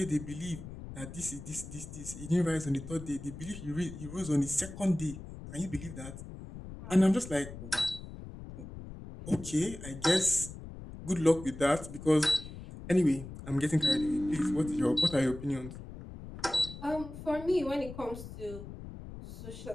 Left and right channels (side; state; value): left; noise; rumble, 12 dB below the sound